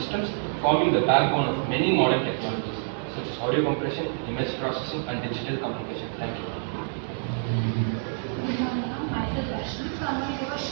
forming the backbone of many modern technologies such as audio compression, image processing, and digital communication. Thank you. Good morning, ma'am. Myself Vaishnavi. So I'm going to give a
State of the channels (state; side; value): silent; left; 60 dB below the other